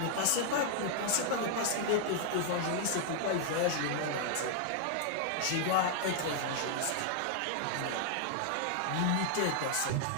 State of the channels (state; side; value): different; both; correlation 0.00